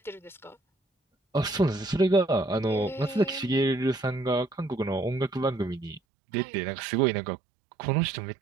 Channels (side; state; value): left; drops out; at 6.0 s